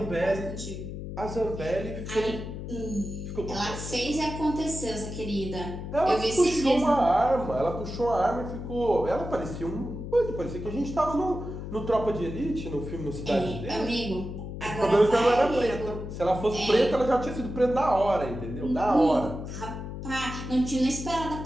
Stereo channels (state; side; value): noise; left; hum, 8 dB below the sound